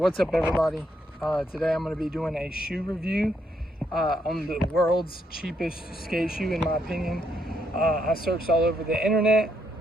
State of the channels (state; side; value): normal; both; correlation 0.75